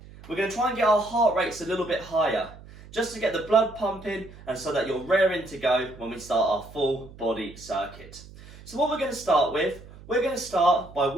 We're going to try and get our heart rates a little bit higher, just to get the blood pumping and so that you're raring to go when we start our full body circuit. So what we're going to start with, we're going to start by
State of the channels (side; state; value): right; noise; hum, 19 dB below the sound